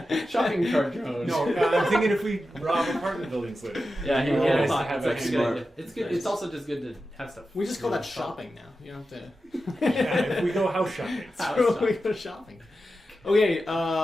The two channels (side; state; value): both; normal; correlation 0.91